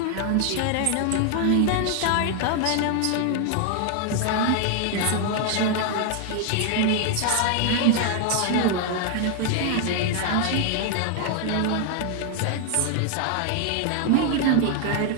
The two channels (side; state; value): both; different; correlation 0.00